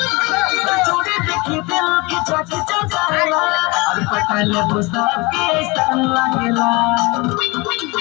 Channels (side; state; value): right; quieter; 25.3 dB